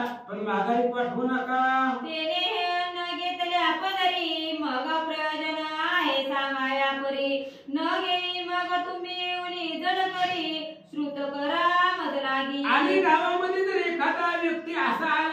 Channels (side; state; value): both; identical; correlation 1.00